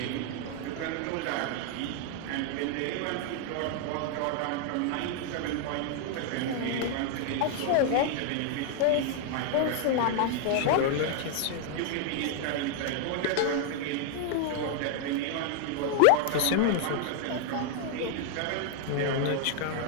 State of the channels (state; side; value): different; both; correlation 0.00